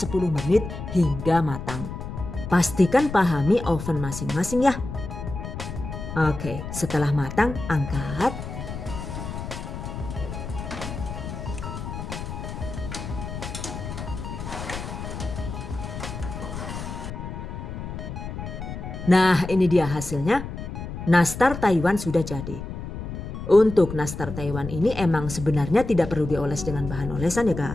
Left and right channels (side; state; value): left; noise; rumble, 8 dB below the sound